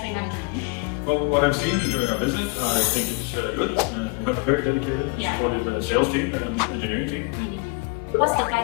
management? Well, what I've seen during our visit, I think it's good. We have a very dedicated and supportive sales team and engineering team. What's the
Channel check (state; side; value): quieter; right; 31.8 dB